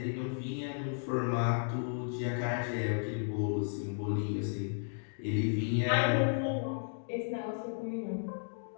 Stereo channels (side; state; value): right; silent; digital silence